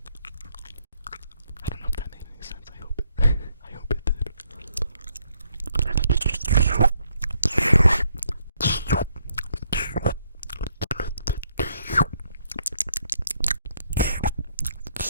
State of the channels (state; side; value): inverted; both; correlation -0.72